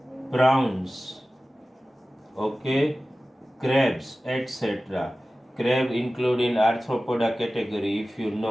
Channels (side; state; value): both; normal; correlation 0.96